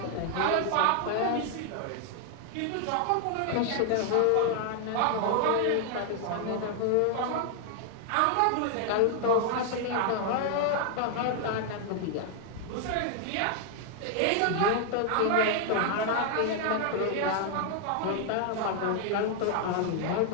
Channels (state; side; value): different; both; correlation 0.00